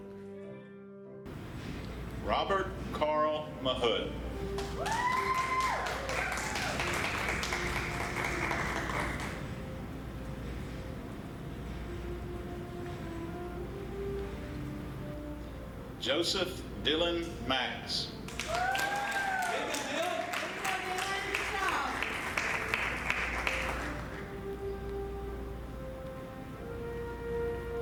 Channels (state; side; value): identical; both; correlation 1.00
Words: Robert Carl Mahood. Joseph Dylan Max.